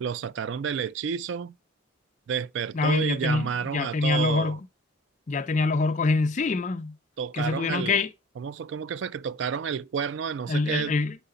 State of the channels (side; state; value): both; normal; correlation 0.44